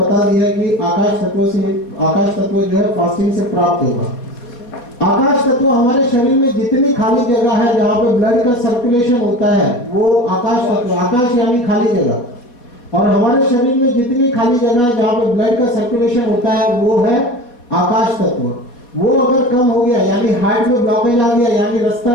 दिया कि आकाश तत्व जो है फास्टिंग से प्राप्त होगा। आकाश तत्व हमारे शरीर में जितनी खाली जगह है जहाँ पे ब्लड का सर्कुलेशन होता है वो आकाश तत्व, आकाश यानी खाली जगह, और हमारे शरीर में जितनी खाली जगह है जहाँ पे ब्लड का सर्कुलेशन होता है वो है आकाश तत्व। वो अगर कम हो गया, यानी हार्ट में ब्लॉकेज आ गया, यानी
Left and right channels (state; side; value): late; right; 4.1 ms